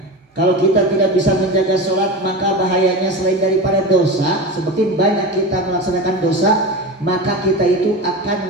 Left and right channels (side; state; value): both; normal; correlation 0.26